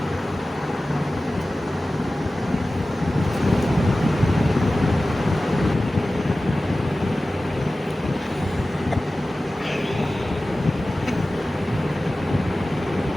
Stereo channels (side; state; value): both; normal; correlation 0.96